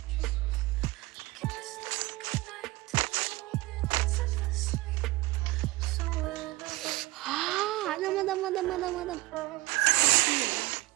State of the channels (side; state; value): left; quieter; 20.7 dB